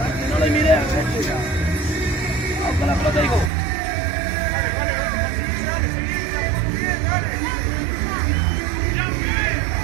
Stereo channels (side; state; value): left; drops out; at 3.5 s